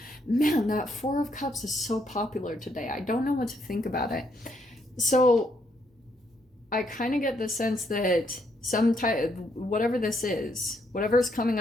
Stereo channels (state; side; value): normal; both; correlation 0.74